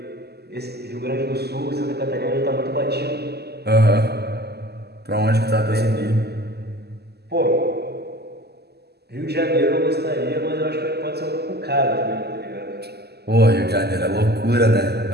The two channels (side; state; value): left; late; 0.47 ms